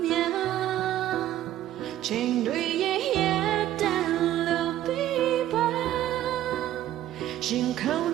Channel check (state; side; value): quieter; left; 12.9 dB